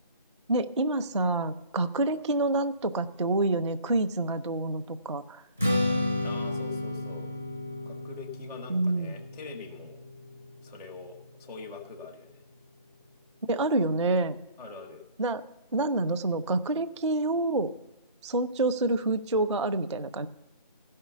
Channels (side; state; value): both; inverted; correlation -0.49